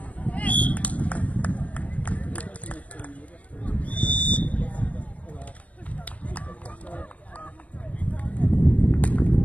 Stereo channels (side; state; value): right; late; 0.067 ms